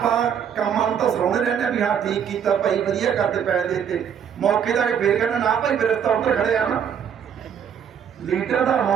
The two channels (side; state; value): left; quieter; 8.2 dB